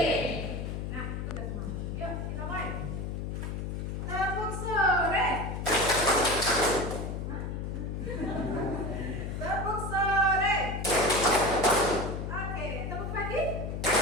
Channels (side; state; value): left; noise; hum, 4 dB below the sound